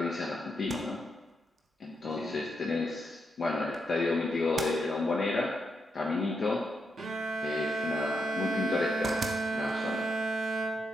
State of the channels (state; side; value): normal; both; correlation 0.82